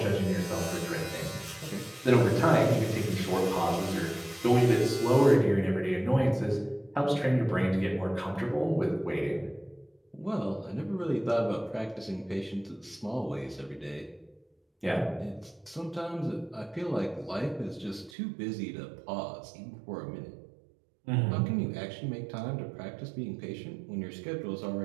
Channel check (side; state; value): left; drops out; at 18.1 s